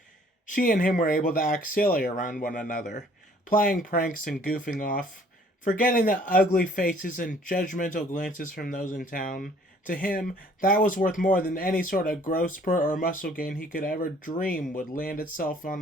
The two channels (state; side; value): normal; both; correlation 0.58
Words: She and him were able to act silly around one another, playing pranks and goofing off, forgetting the ugly faces and judgmental glances from those in town. To him, that was worth more than any sort of growth spurt or muscle gain he could ever dream would land itself on